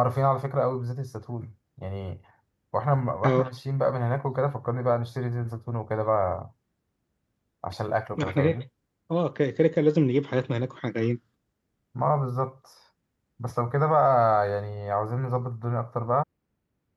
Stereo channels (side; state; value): both; identical; correlation 1.00